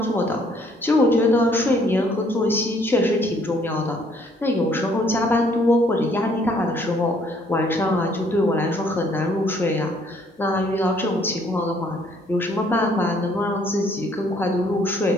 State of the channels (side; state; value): both; normal; correlation 0.64